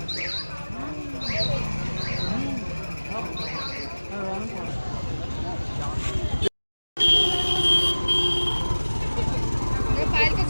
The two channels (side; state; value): both; inverted; correlation -1.00